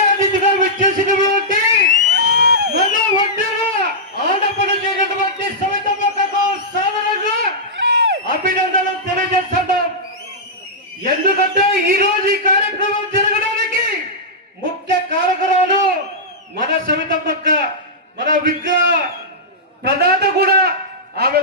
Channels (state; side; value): normal; both; correlation -0.12